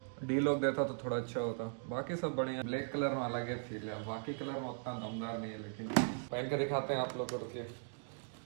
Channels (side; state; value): left; silent; digital silence